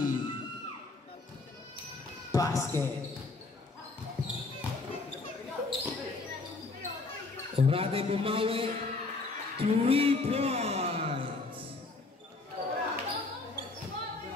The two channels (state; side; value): quieter; right; 3.6 dB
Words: Basket. Orade bumawi. 3 points.